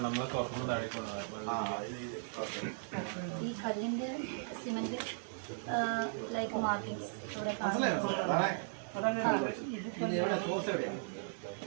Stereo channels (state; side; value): silent; left; digital silence